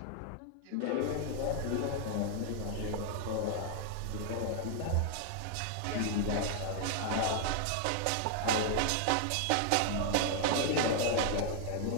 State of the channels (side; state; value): both; different; correlation 0.00